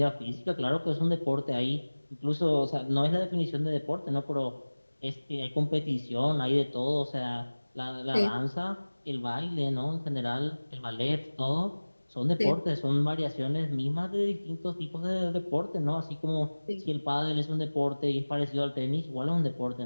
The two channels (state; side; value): inverted; both; correlation -1.00